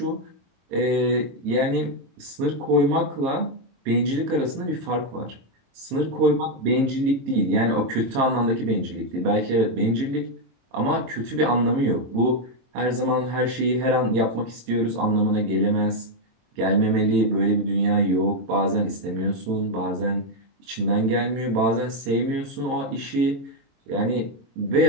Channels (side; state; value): left; late; 22 ms